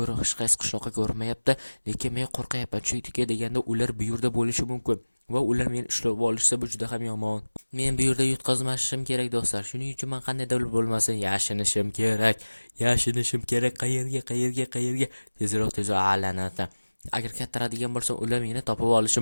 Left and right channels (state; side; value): inverted; both; correlation -1.00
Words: hech qaysi qishloqqa ko'rinmayapti, lekin men qo'rqayapman, chunki deganda ular bu yerda bo'lishi mumkin va ular meni ushlab olishsa bu juda ham yomon. Men bu yerda yutqazmashim kerak do'stlar. Shuning uchun men qandaydir bo'lmasin yashinishim kerak. Qayerga? Tezroq allanata. Agar kattaradigan bo'lsam, ular meni topib olishi